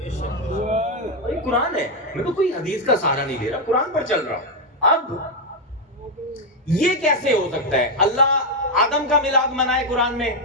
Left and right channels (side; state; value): both; normal; correlation 0.03